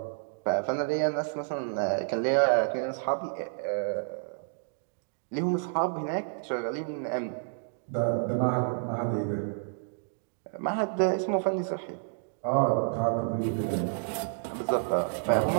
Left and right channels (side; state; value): left; silent; digital silence